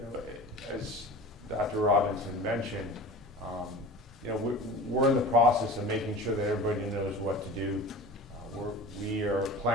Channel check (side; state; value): both; normal; correlation 0.36